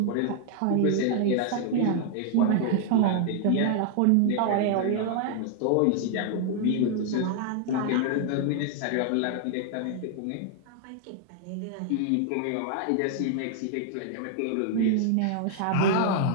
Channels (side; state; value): both; different; correlation 0.00